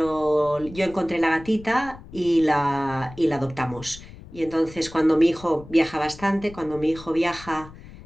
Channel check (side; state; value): left; noise; rumble, 17 dB below the sound